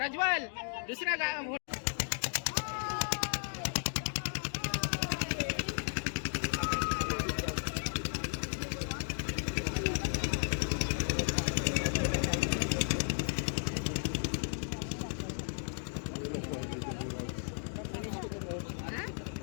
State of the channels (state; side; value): silent; right; 55 dB below the other